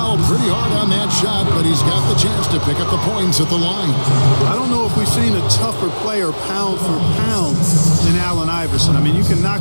pretty hard on that shot, but he's got the chance to pick up the points at the line. I don't know if we've seen a tougher player pound for pound than Allen Iverson. I mean, you can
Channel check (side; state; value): both; inverted; correlation -1.00